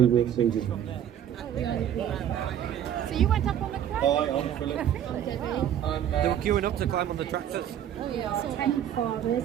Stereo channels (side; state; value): left; quieter; 10.2 dB